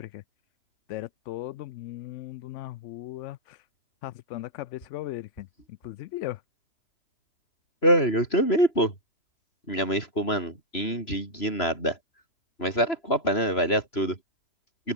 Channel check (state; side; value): late; right; 3.0 ms